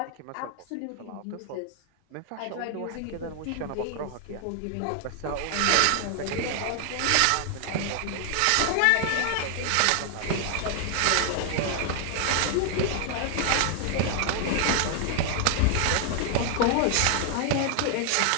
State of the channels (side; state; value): both; different; correlation 0.00